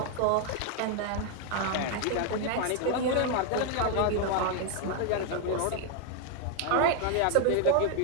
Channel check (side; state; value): both; different; correlation 0.01